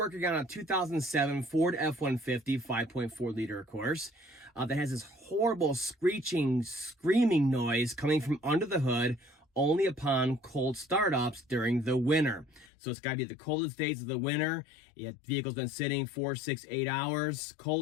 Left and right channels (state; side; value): drops out; right; at 12.7 s